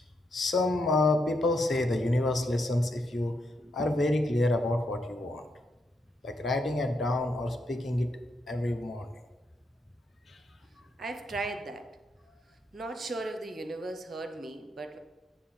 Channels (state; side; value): normal; both; correlation 0.80